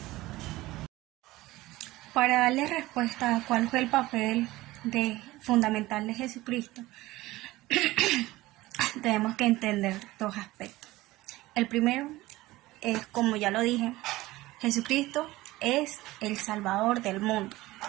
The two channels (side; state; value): left; quieter; 18.3 dB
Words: Para darle respuesta a cuál fue el papel fundamental de Jesucristo, tenemos que entender dos aspectos. El primero es, como ya lo dije, Jesucristo es el Salvador del mundo.